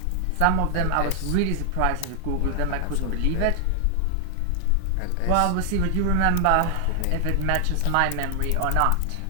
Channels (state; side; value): different; both; correlation 0.00